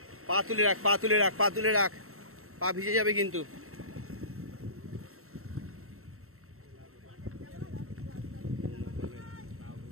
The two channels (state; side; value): late; left; 0.63 ms